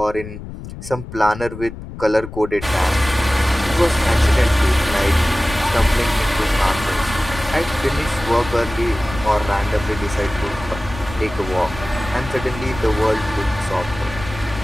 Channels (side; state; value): left; noise; rumble, 12 dB below the sound